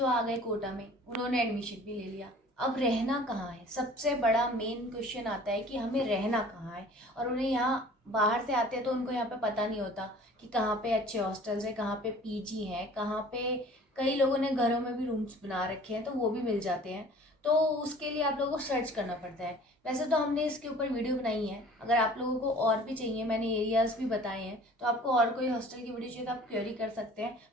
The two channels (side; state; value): both; normal; correlation 0.48